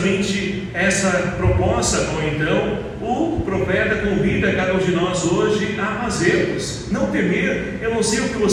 essa proposta com então o profeta convida cada um de nós hoje a fazermos. Não temer. Eu não sei o que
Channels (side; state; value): both; identical; correlation 1.00